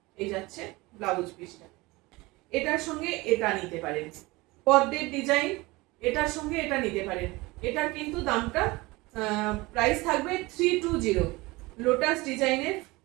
এই যাচ্ছে, ব্লাউজ পিসটা। এটার সঙ্গে এটা নিতে পারেন, পদ্মের ডিজাইন, এটার সঙ্গে এটা নিতে পারেন। এটার কিন্তু দামটা প্রাইস থাকবে 320, লোটাস ডিজাইনের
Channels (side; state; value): left; quieter; 22.3 dB